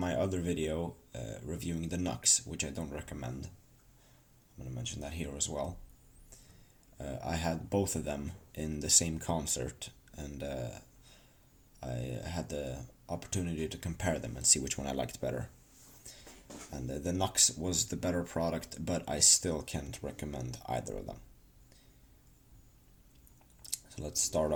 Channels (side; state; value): both; identical; correlation 1.00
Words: other video reviewing the Nux, which I don't recommend, I'm going to mention that here as well. I had both of them in the same concert, and I had the opportunity to compare them and see which one I liked better. And the Nux was the better product, but I still can't recommend either of them. So let's start